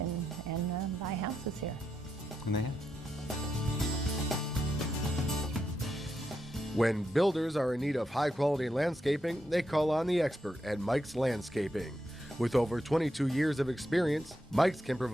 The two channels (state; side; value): normal; both; correlation 0.84